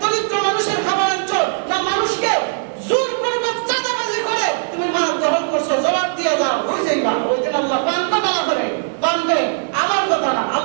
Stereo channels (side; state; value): left; silent; digital silence